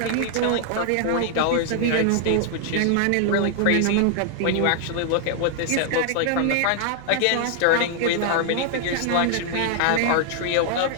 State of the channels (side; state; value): both; different; correlation 0.00